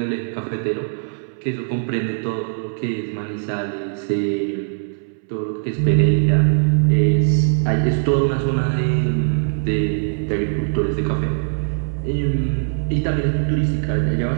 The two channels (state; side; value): silent; left; 65 dB below the other